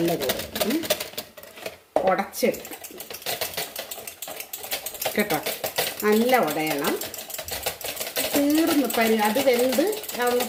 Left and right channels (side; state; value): both; identical; correlation 1.00